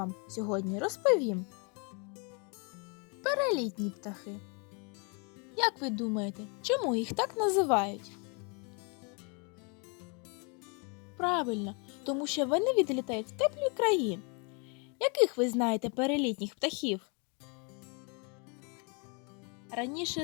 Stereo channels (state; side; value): quieter; right; 34.8 dB